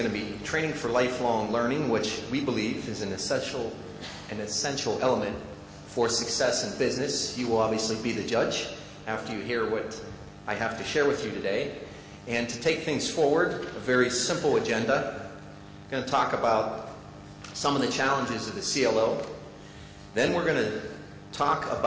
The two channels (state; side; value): identical; both; correlation 1.00